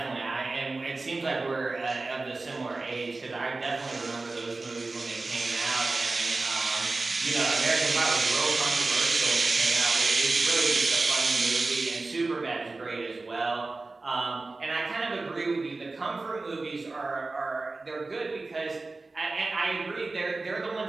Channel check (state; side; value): quieter; left; 3.5 dB